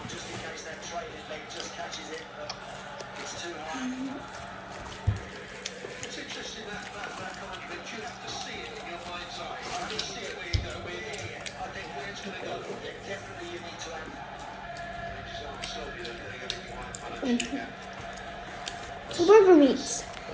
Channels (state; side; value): identical; both; correlation 1.00